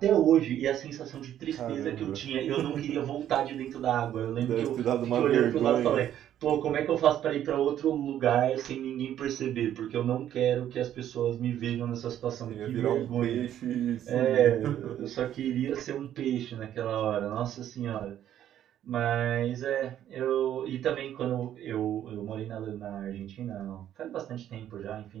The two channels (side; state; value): left; quieter; 11.1 dB